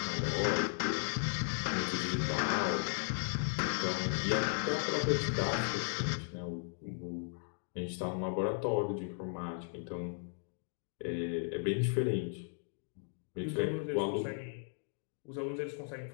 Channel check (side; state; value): right; silent; 54 dB below the other